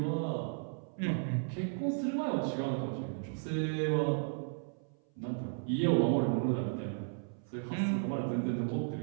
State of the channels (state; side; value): silent; left; 55 dB below the other